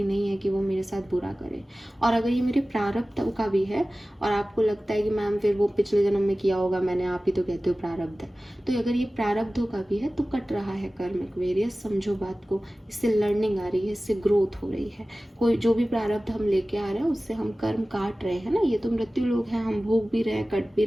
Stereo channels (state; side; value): normal; both; correlation 0.97